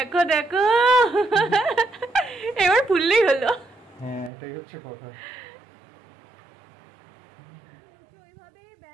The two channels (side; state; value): left; drops out; at 4.3 s